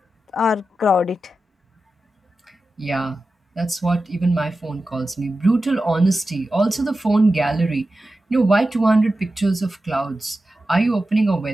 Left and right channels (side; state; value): both; normal; correlation 0.93